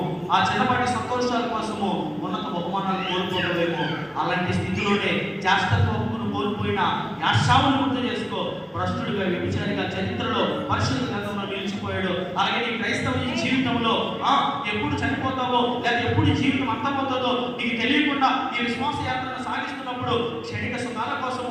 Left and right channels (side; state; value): both; identical; correlation 1.00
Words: ఆ చిన్నపాటి సంతోషాల కోసము ఉన్నత బహుమానాలు కోల్పోవడమేమో, అలాంటి స్థితిలోనే జాస్తత్వమును కోల్పోయిన యాశావును గుర్తు చేసుకో. భ్రష్టుడిగా, వ్యభిచారిగా చరిత్రలో పరిశుద్ధ గ్రంథంలో నిలిచిపోయాడు. అలాగే నీ క్రైస్తవ జీవితంలో ఎప్పుడు చనిపోతావో లేదా ఎప్పుడు జీవితం అంతమవుతుందో నీకు తెలియకుండా ఈ విశ్వాస యాత్రను సాగిస్తున్నప్పుడు క్షణిక సుఖాల